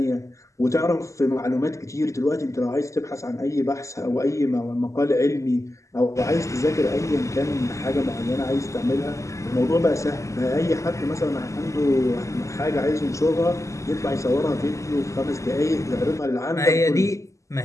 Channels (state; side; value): late; right; 0.15 ms